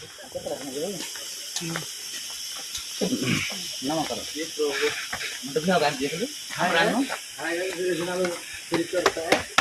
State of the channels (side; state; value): both; identical; correlation 1.00